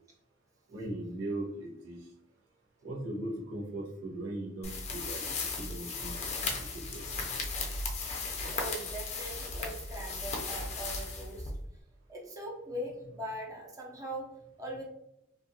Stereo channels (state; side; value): normal; both; correlation 0.34